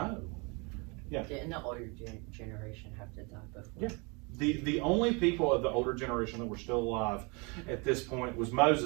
Yeah. Didn't the older generation have to die before? Yeah. The only people of the older generation that were still alive at this point was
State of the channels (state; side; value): quieter; left; 30.3 dB